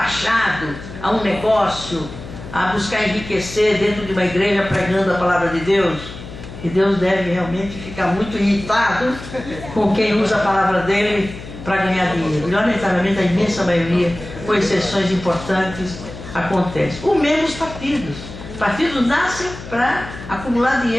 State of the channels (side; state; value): left; noise; hum, 13 dB below the sound